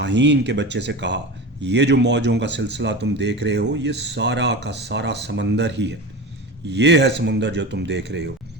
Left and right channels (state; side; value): normal; both; correlation 0.28